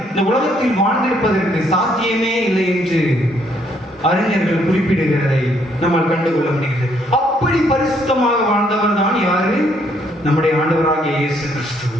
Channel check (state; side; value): normal; both; correlation 0.69